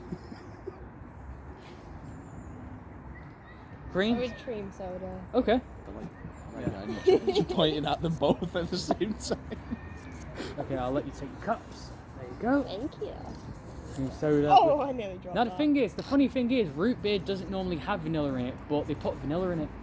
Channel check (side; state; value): both; identical; correlation 1.00